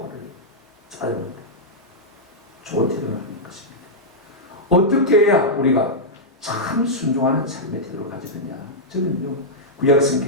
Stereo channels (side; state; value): both; normal; correlation -0.08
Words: 화를 내요. 짜증납니다. 좋은 태도는 아닌 것입니다. 어떻게 해야 우리가 참 순종하는 삶의 태도를 가지느냐. 저는요, 구약